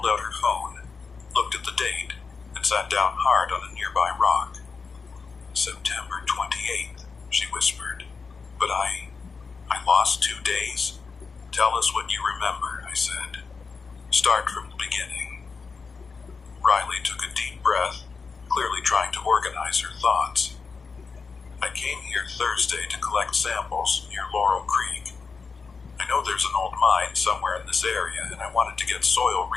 out her phone, looked at the date, and sat down hard on a nearby rock. September 28th, she whispered. But I lost 2 days? Tell us what you remember, I said. Start from the beginning. Riley took a deep breath, clearly trying to organize her thoughts. I came here Thursday to collect samples near Laurel Creek. I know there's an old mine somewhere in this area, and I wanted to get soil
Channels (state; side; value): quieter; right; 4.9 dB